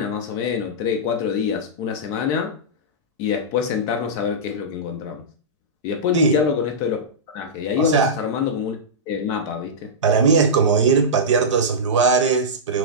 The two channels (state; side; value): normal; both; correlation -0.14